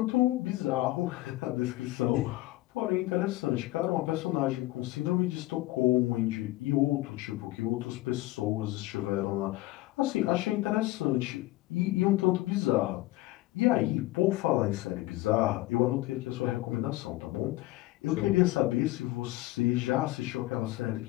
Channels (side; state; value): right; quieter; 18.3 dB